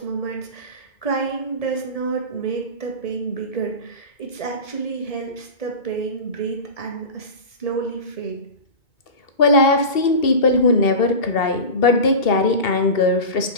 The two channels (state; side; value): late; right; 2.7 ms